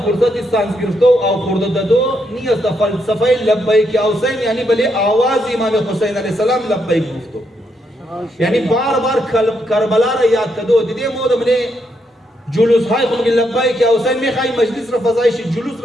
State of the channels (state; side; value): normal; both; correlation 0.78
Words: سانس گرفتو او خورده دادو نیست. فلسفه لبیک یا حسین یعنی بلی آواز امام حسین علیه السلام لبیک گفتو، یعنی بار بار کربلا را یاد کدو. دیدی مود منه جلوس های خود لبیک یا حسین میخوای مجلس را فضایش جلوس